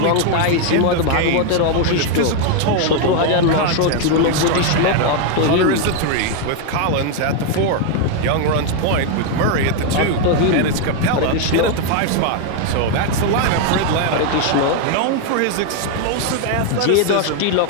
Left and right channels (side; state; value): both; different; correlation 0.01